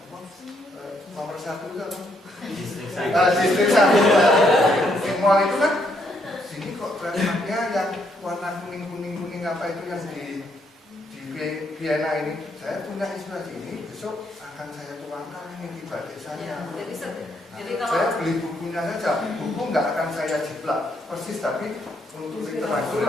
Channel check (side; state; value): both; normal; correlation 0.73